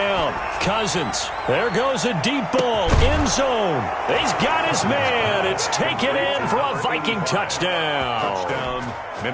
Cousins. There goes a deep ball. End zone. He's got his man. It's taken in for a Viking touchdown. Touchdown,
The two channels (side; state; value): both; identical; correlation 1.00